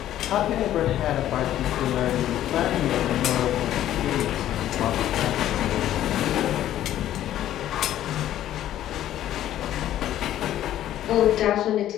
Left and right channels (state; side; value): quieter; right; 12.4 dB